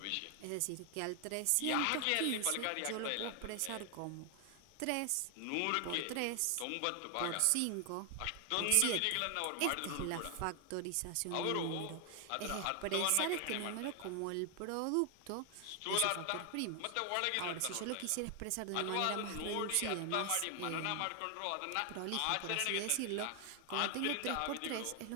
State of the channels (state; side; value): different; both; correlation 0.00